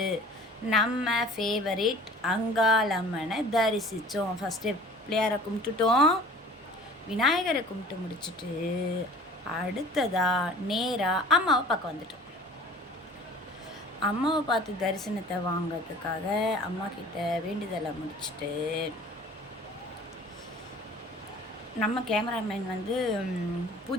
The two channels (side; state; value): both; normal; correlation 0.47